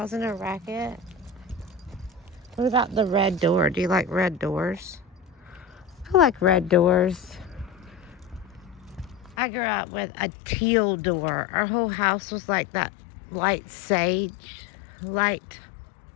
a racket? What about the red door? Do you like red doors? I like red doors. I grew up with a teal door. Our whole house was like that light sage, light,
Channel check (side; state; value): right; drops out; at 9.3 s